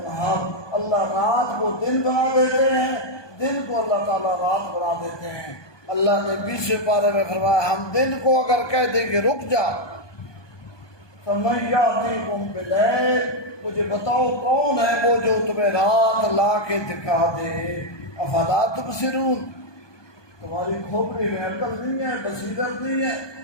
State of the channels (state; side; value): late; right; 1.2 ms